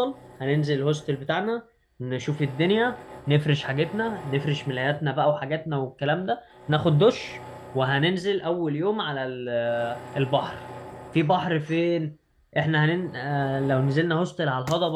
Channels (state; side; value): identical; both; correlation 1.00